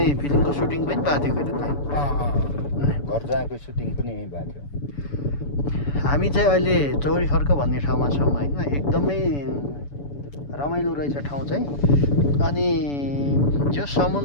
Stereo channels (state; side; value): late; right; 7.0 ms